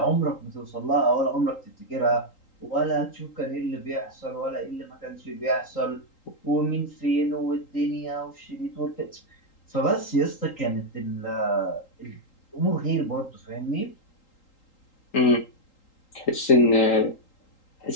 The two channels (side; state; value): right; late; 3.8 ms